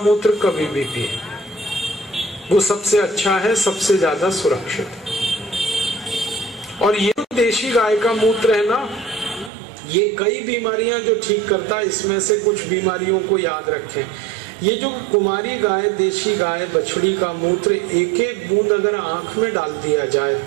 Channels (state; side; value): drops out; left; at 9.5 s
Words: कभी भी पिए, वो सबसे अच्छा है, सबसे ज्यादा सुरक्षित है। और ये देशी गाय का मूत्र है ना, ये कई बीमारियां जो ठीक करता है, इसमें से कुछ बीमारियों को याद रखें। ये जो कुमारी गाय, देशी गाय, बछड़ी का मूत्र एक एक बूंद अगर आंख में डाल दिया जाए